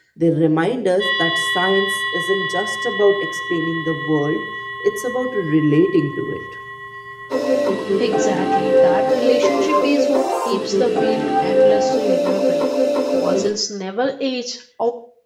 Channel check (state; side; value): identical; both; correlation 1.00